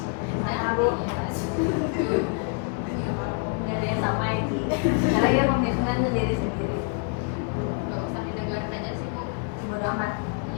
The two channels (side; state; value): right; quieter; 38.2 dB